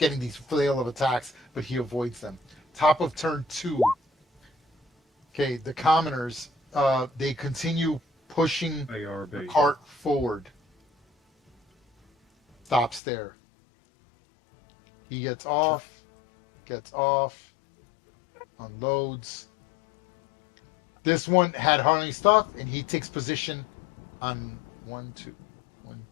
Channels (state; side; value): drops out; right; at 13.0 s